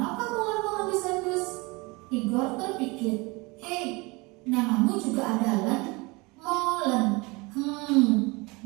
Molen mengendus-endus? Tigor terpikir. Hei, namamu juga ada Len? Molen.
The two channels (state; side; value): quieter; left; 25.8 dB